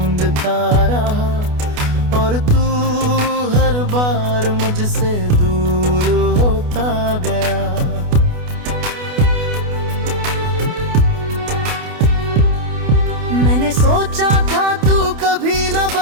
रहा, और तू हर बार मुझसे दूर होता गया। मैंने सोचा था तू कभी न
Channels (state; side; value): late; left; 28 ms